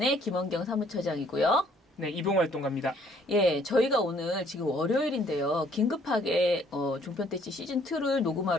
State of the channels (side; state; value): both; normal; correlation 0.62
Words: 김원경 사무처장이고요. 네, 이봉활동가입니다. 예, 저희가 오늘 지금 월요일인데요. 긴급하게 종편대찌 시즌2를